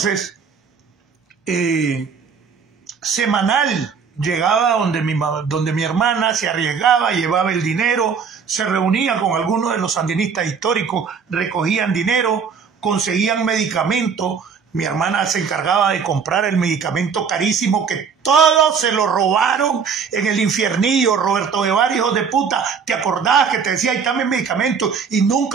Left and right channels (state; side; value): quieter; left; 6.2 dB